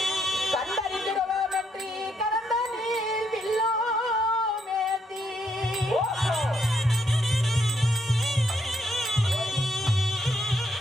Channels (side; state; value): both; normal; correlation 0.75